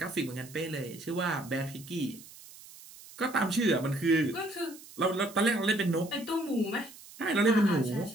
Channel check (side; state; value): right; noise; hiss, 19 dB below the sound